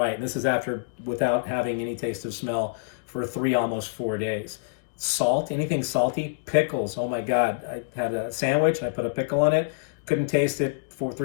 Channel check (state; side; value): quieter; right; 32.6 dB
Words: And this is without having any taste of smell for almost 4 days. Salt, anything salty, pickles. Oh my God. I had a sandwich, I put a pickle on it. Couldn't taste it